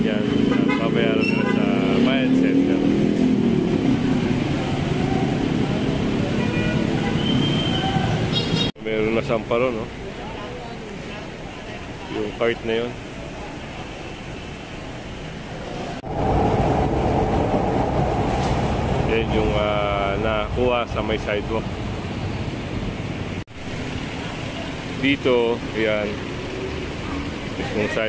pabayaran nila sa Bayan Center. Meron na samparo, no? Yung cart na yun. Yan yung nakuha sa may sidewalk. Dito, yan. Mismong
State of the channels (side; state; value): both; identical; correlation 1.00